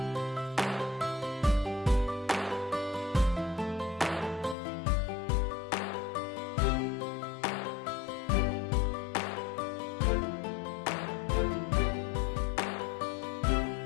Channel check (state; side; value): drops out; right; at 4.5 s